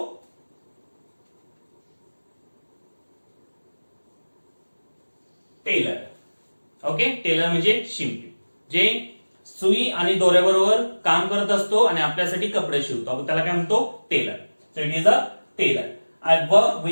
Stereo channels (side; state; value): both; inverted; correlation -1.00